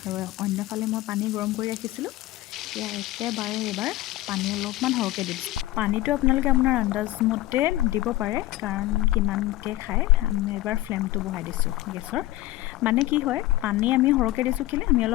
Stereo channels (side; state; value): right; quieter; 16.6 dB